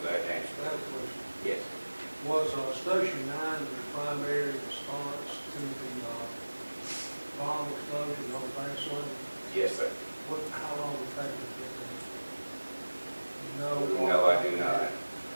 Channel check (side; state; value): both; inverted; correlation -1.00